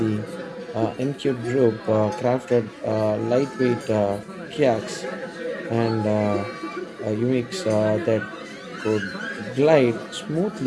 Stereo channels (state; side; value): identical; both; correlation 1.00